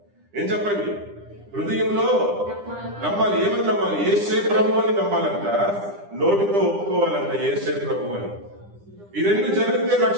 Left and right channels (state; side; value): late; left; 9.9 ms